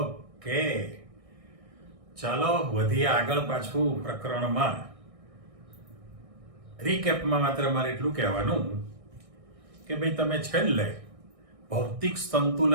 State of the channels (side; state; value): left; late; 1.6 ms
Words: ચાલો વધીએ આગળ પાછું પ્રકરણમાં. રીકેપમાં માત્ર મારે એટલું કહેવાનું કે ભાઈ તમે છેલ્લે ભૌતિક